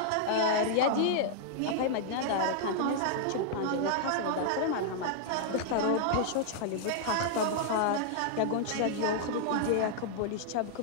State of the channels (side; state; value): both; different; correlation -0.01